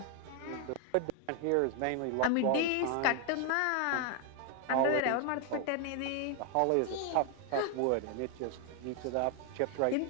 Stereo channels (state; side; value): different; both; correlation 0.00